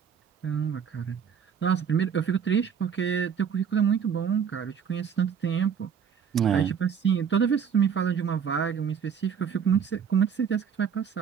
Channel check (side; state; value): left; quieter; 7.4 dB